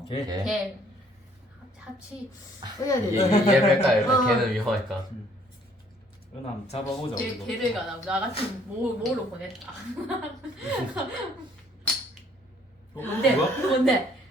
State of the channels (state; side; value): normal; both; correlation 0.61